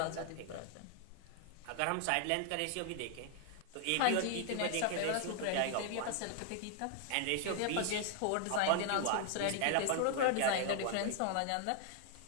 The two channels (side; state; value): both; different; correlation 0.00